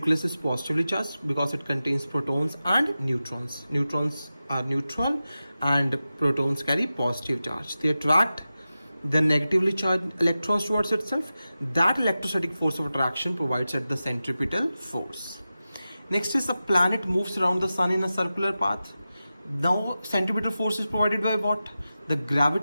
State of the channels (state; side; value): inverted; both; correlation -0.94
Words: is positively charged because it contains protons and neutrons. Neutrons are neutral and protons carry positive charge. They attract the negatively charged electrons towards itself. That electrostatic force of attraction provides it the centripetal force. Next is, a planet moves around the sun in a circular path. Now centripetal force is provided by what? The